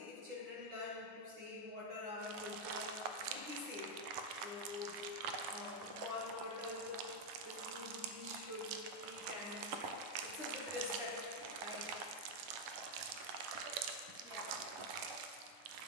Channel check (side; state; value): left; late; 10 ms